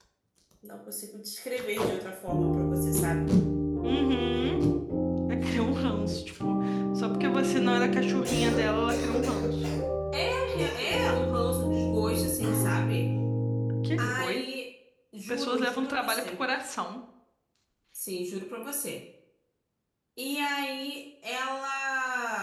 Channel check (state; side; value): identical; both; correlation 1.00